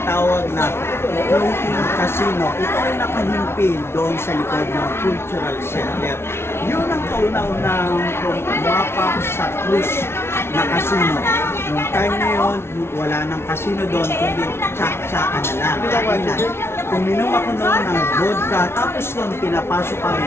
na floating casino. Ito ay nakahimpil doon sa likod ng Cultural Center. Yun ang kauna-unang pumapak sa cruise na casino. Noong time na yun, wala nang casino doon, kundi tsak-tsakan na lang. Kainan. Uminom ako noon ng vodka, tapos noon pinapasok kami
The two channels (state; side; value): late; right; 0.12 ms